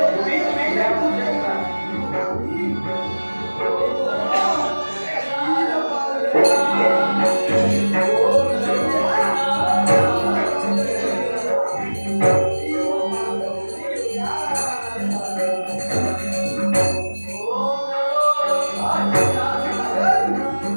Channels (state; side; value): inverted; both; correlation -1.00